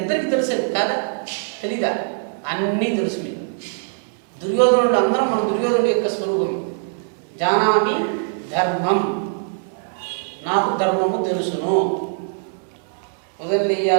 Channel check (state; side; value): silent; left; digital silence